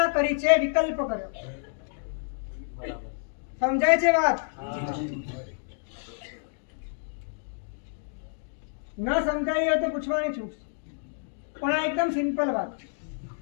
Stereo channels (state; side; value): silent; right; digital silence